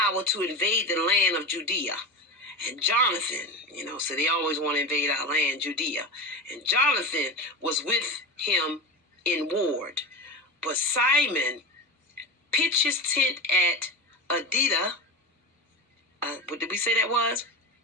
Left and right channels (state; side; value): normal; both; correlation 0.24